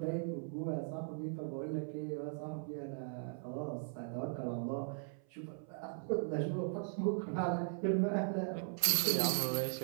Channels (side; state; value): left; silent; 52 dB below the other